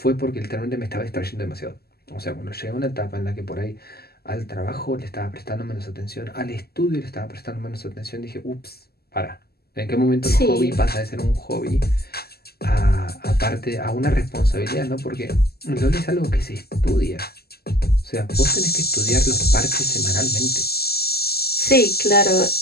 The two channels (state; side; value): late; right; 0.46 ms